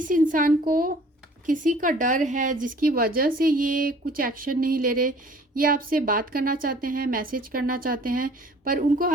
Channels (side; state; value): both; normal; correlation 0.52